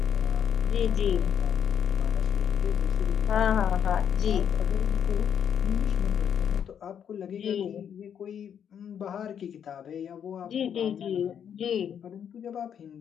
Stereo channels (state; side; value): quieter; right; 8.5 dB